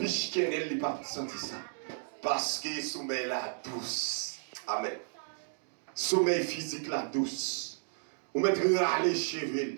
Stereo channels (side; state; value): left; silent; digital silence